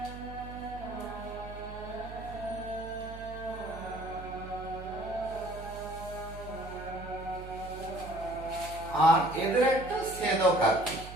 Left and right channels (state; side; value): noise; right; hum, 12 dB below the sound